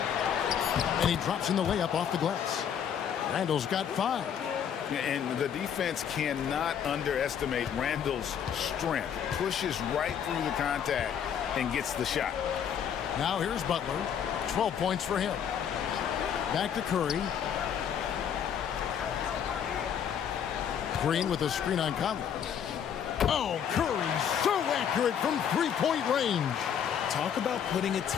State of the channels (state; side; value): quieter; right; 8.4 dB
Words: And he drops in the layup off the glass. Randle's got 5. And the defense cannot underestimate Randle's strength. Pushes right through the contact and gets the shot. Now here's Butler. 12 points for him. Back to Curry. Green with a screen on Conley. Oh, Curry so accurate from 3-point range. Talk about putting a